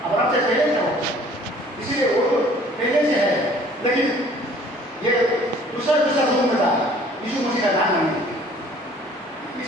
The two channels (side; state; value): both; normal; correlation 0.54